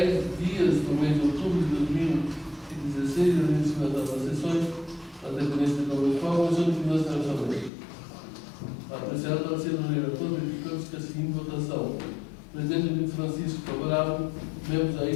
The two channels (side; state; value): right; drops out; at 7.7 s